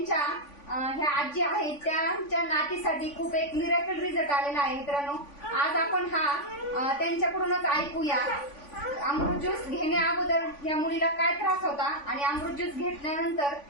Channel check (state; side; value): late; right; 3.5 ms